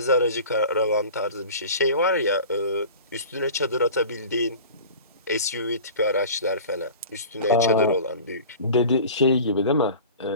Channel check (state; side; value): inverted; both; correlation -0.40